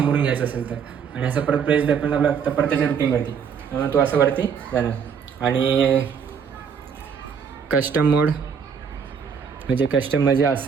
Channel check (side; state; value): left; quieter; 6.8 dB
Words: घ्यायचा असेल तर. आणि असं परत प्रेस द्यायला आपल्याला लागतं परत त्याच्या रुटीनवरती, तो असं वरती जाणार. आणि कस्टम मोड म्हणजे